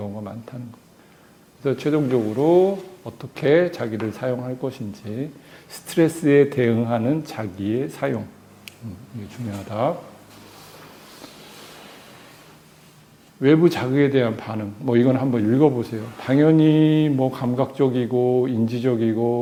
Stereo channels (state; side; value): identical; both; correlation 1.00